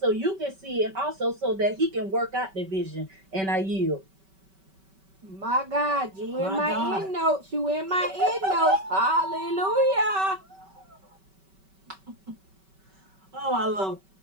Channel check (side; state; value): left; late; 5.2 ms